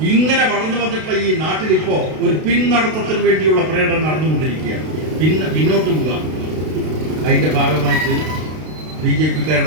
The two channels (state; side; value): late; left; 32 ms